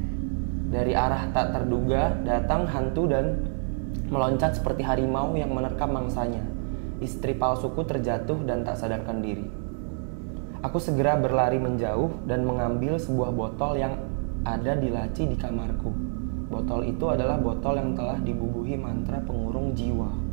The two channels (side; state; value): left; silent; digital silence